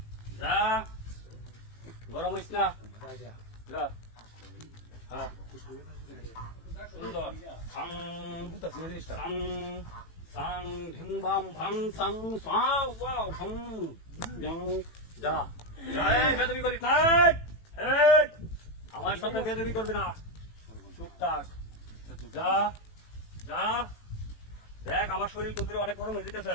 যা গরম হইস না যা হ্যাঁ সুন্দর সাং সাং সাং ধিং বাম ভাং সাং সা ওয়াও সাং যা যা বেদবি করি থাক আমার সাথে বেদবি করবে না টুকটাক যা যা দেখ আমার শরীর কুন্দিরে অনেক গরম হয়ে যেতেছে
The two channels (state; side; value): late; right; 18 ms